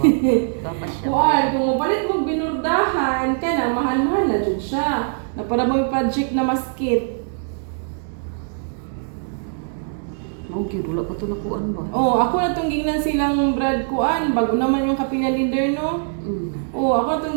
Baka siya. Kuan kung mapalit mo binurdahan kana mahal-mahal na jud siya. Na para mo project na maskit. Mao gyud wala pa to nakuan ba? Oh, ako na tong gingnan silang Brad kuan bago naman yung kapilya leader no. Oh, ako na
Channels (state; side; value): silent; left; digital silence